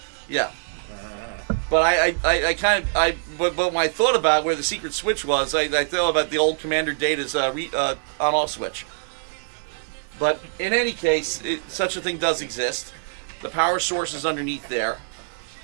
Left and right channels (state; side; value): silent; left; digital silence